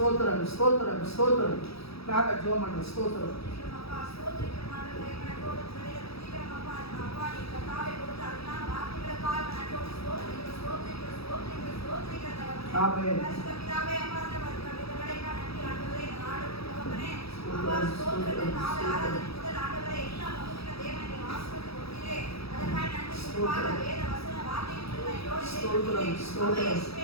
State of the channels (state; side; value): late; right; 0.77 ms